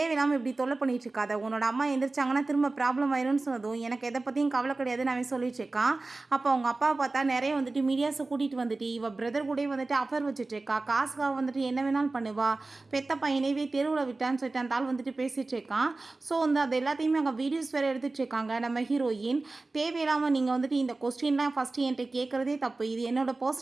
இப்படி தொல்லை பண்ணிட்டு இருக்காத, உன்னோட அம்மா எந்திரிச்சாங்கன்னா திரும்ப ப்ராப்ளம் ஆயிரும்னு சொன்னதும் எனக்கு எதை பற்றியும் கவலை கிடையாதுன்னு அவன் சொல்லிட்டு இருக்கான். அப்போ அவங்க அப்பாவை பார்த்தா நிறைய வந்துட்டு மீடியாஸை கூட்டிகிட்டு வந்துட்டு இவ பிரதர் கூட வந்துட்டு அஃபர் வச்சுட்டு இருக்கா, காசுக்காக வந்துட்டு என்ன வேணாலும் பண்ணுவா, பெத்த பையனைவே தெருவில் விட்டான்னு சொல்லிட்டு அந்த ஆள் வந்துட்டு பேசிகிட்டு இருக்கான். ஸோ வந்து அது எல்லாத்தையுமே அங்கே வீடியோஸ் வேறு எடுத்துகிட்டு இருக்காங்க. நம்ம ஹீரோயின் தேவையில்லாமல் நீங்கள் வந்துட்டு இந்த கொஸ்டின்லாம் ஃபஸ்ட்டு என்கிட்ட கேட்குறதே தப்பு, இது என்னோட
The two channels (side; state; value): left; quieter; 3.3 dB